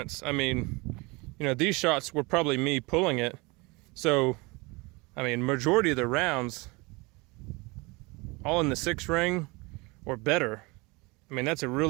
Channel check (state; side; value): quieter; left; 25.8 dB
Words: I mean, you know, these shots were probably me pulling it. So, I mean, majority of the rounds, all in the 6 ring or better. I mean, that's a